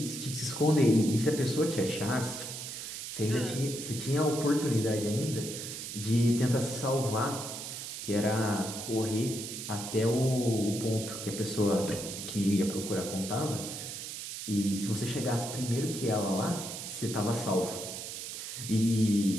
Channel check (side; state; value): right; noise; hiss, 7 dB below the sound